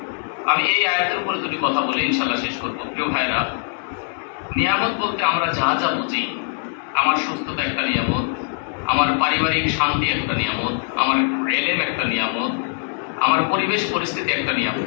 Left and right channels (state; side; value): silent; right; digital silence